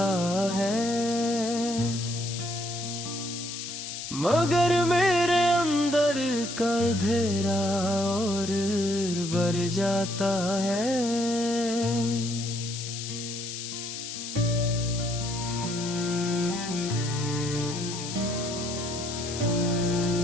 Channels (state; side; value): noise; left; hiss, 7 dB below the sound